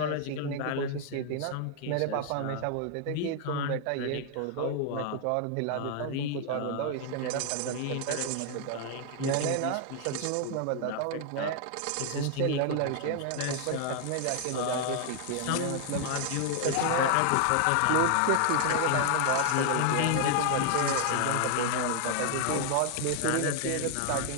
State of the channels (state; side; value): different; both; correlation 0.00